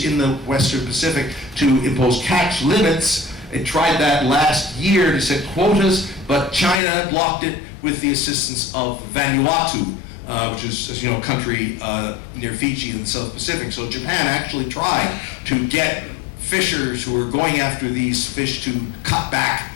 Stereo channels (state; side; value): drops out; right; at 6.8 s